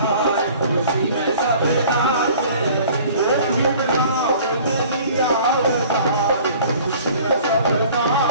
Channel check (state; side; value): inverted; both; correlation -0.49